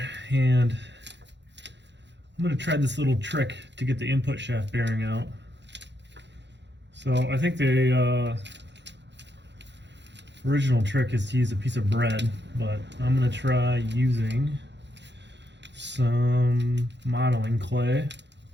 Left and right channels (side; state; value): left; late; 0.52 ms